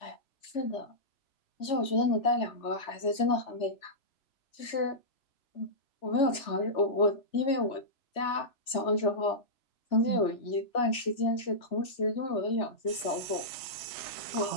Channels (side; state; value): right; late; 3.4 ms